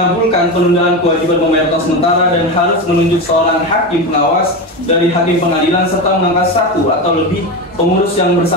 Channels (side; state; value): both; normal; correlation 0.19